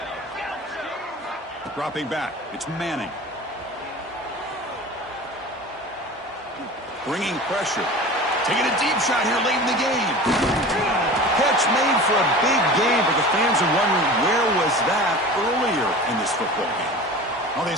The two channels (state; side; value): normal; both; correlation 0.36